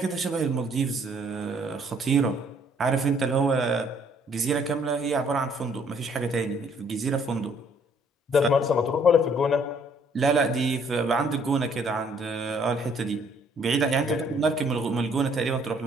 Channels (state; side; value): normal; both; correlation 0.63